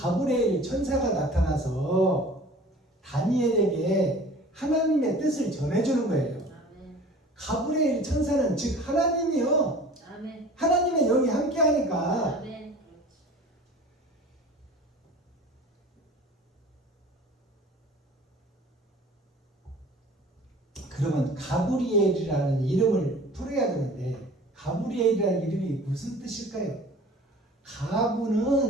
천사가 나타나서 다니엘에게 하나님의 뜻을 전해주는 거예요. 가브리엘 천사는 즉 하나님이요. 하나님의 영이 함께하니까. 그러면 가브리엘이라는 이름을 풀어야 되는데 가브리엘이라는 이름이 무슨 뜻일까요?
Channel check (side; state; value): both; normal; correlation 0.44